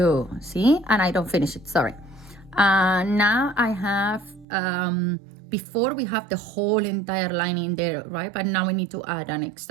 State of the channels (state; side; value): drops out; left; at 4.5 s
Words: see, and I don't finish it, sorry. Now I have before we have the whole entire line in there, right? But now we need to add an